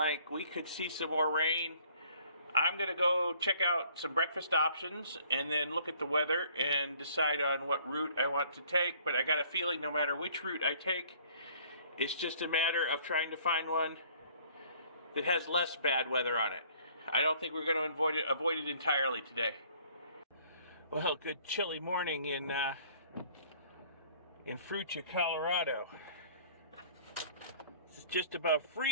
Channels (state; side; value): inverted; both; correlation -0.57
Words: we could see some more rain. I'm going to go check out some breakfast options and then look at the weather and decide on what route I want to take. But I got a feeling no matter which route I take, it's just a matter of trying to find one that has less bad weather on it. I don't think we're going to avoid it entirely today. Well, good chilly morning in Fruita, Colorado. It's just above